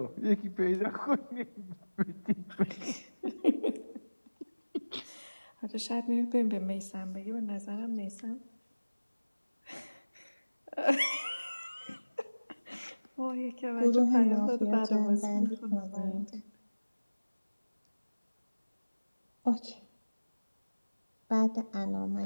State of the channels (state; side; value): inverted; both; correlation -1.00